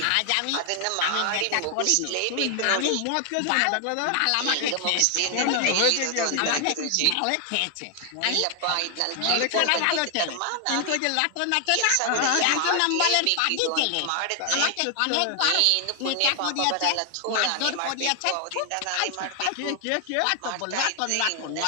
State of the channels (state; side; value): different; both; correlation 0.00